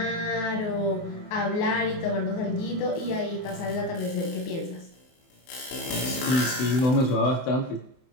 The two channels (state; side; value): late; right; 24 ms